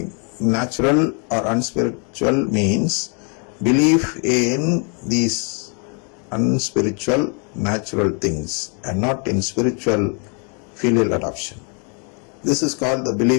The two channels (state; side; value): quieter; right; 38.3 dB